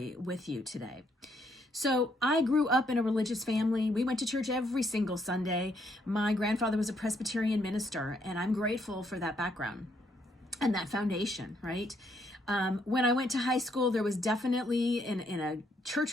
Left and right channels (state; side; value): normal; both; correlation 0.72